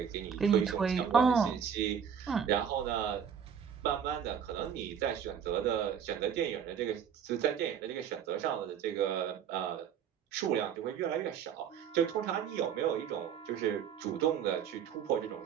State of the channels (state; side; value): quieter; left; 7.9 dB